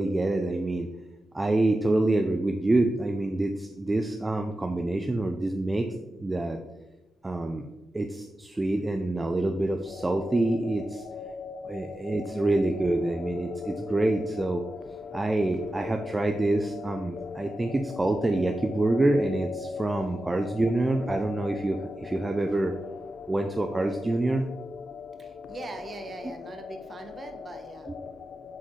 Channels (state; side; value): normal; both; correlation 0.92